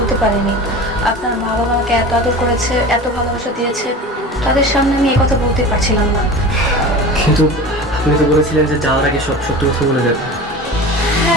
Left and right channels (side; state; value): both; normal; correlation 0.34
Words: পারিনি। আপনার মা বাবা আমাকে এত আদর করেছে, এত ভালোবাসা দিয়েছে, তাদের সামনে আমি এই কথা বলতে পারছিলাম না। কিন্তু আপনি তো বলেছিলেন যে যাওয়ার আগে সব সত্যি কথা বলে যাবেন।